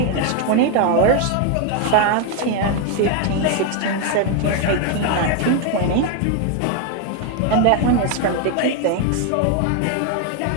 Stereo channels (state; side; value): different; both; correlation 0.01